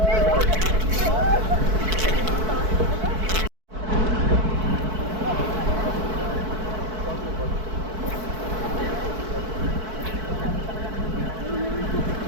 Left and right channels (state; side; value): late; left; 4.6 ms